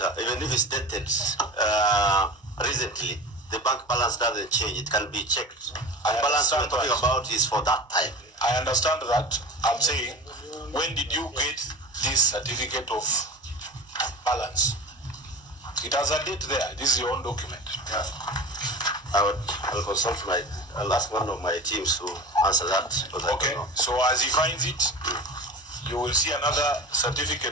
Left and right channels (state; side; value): normal; both; correlation 0.32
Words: even if it's dated recently, the bank balance doesn't change. It can be checked. The balance we're talking about is for that time. I understand that. I'm saying, when did you get this certificate of balance? It has a date there. This is your own document. Yeah. I'll consult I'll ask one of my teams to answer that. Okay, so as he finds it, you will see another